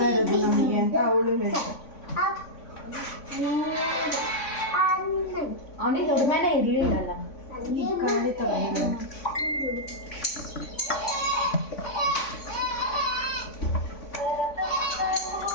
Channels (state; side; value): late; right; 3.5 ms